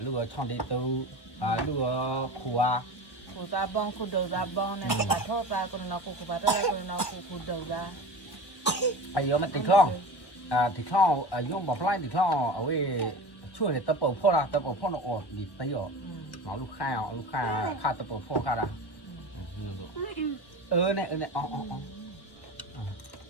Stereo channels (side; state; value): right; late; 1.2 ms